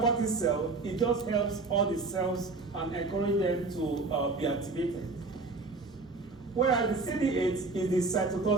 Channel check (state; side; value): quieter; left; 3.7 dB